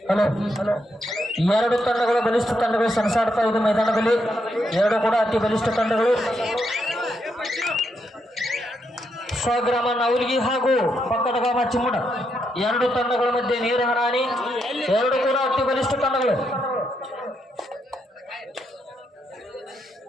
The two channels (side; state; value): both; normal; correlation 0.80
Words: ಹಲೋ ಎರಡು ತಂಡಗಳು ಬಲಿಷ್ಠ ತಂಡಗಳು ಸೆಣಸಾಡ್ತಾ ಇದೆ ಮೈದಾನದಲ್ಲಿ. ಎರಡು ಕೂಡ ಅತಿ ಬಲಿಷ್ಠ ತಂಡಗಳು. ಸ್ವಗ್ರಾಮ ನವಲ್ಗಿ ಹಾಗೂ ಪಕ್ಕದ ಗ್ರಾಮ ಚಿಮ್ಮಡ ಎರಡು ತಂಡಗಳ ಮಧ್ಯೆ ನೀರು ಹರಾಣಿ. ಎರಡು ಕೂಡ ಅತಿ ಬಲಿಷ್ಠ ತಂಡಗಳು.